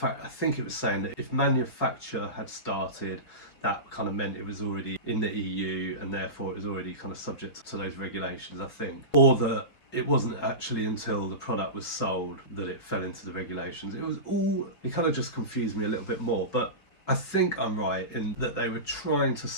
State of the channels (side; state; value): right; late; 5.3 ms